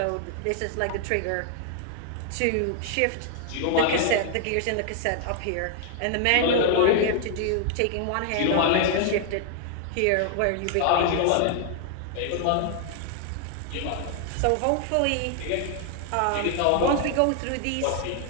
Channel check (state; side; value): different; both; correlation 0.00